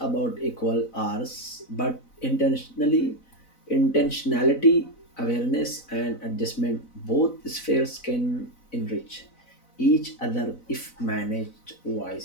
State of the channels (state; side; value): late; right; 4.0 ms